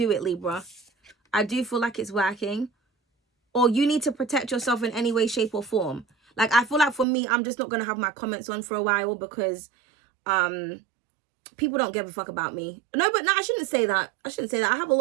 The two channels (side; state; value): left; drops out; at 7.1 s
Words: it, Libra. I do feel like it's working. Or you need to protect yourself in any way, shape, or form. Like, I feel like for me, I'm just not going to have my comments on for a while because people don't give a fuck about me. No, but no, I shouldn't say that. I shouldn't say that. I have a